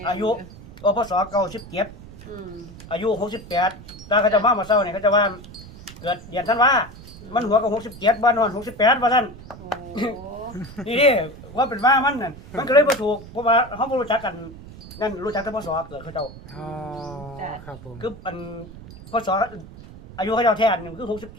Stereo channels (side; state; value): right; noise; rumble, 16 dB below the sound